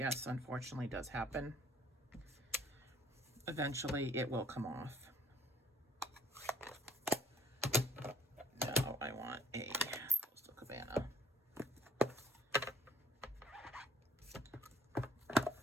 unfortunately does happen. Eventually it will come off. Now I want a Coastal Cabana.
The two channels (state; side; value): normal; both; correlation 0.55